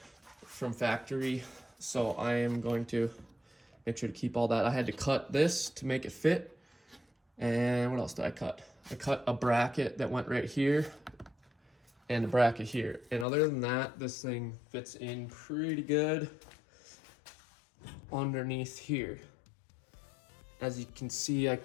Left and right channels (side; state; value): right; drops out; at 13.2 s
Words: from factory. So I am going to make sure to keep all that. I had to cut this to make it fit. And what else did I cut? I cut a bracket that went right here and a bracket here. And other than that, this thing fits in pretty good underneath here. As you can see, I